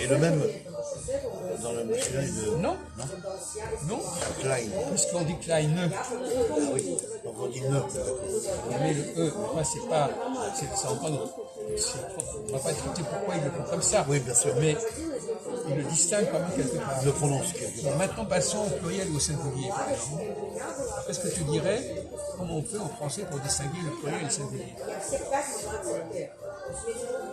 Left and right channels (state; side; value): identical; both; correlation 1.00